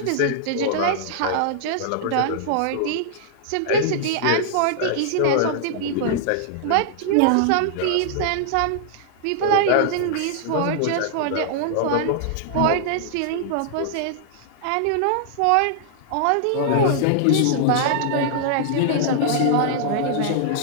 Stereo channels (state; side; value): different; both; correlation -0.01